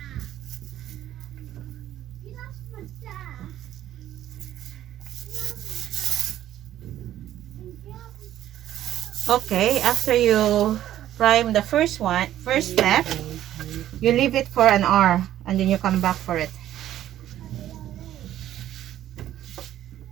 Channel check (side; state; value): left; quieter; 12.5 dB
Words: Okay, after you prime the first step, you leave it for an hour and then you come back for it.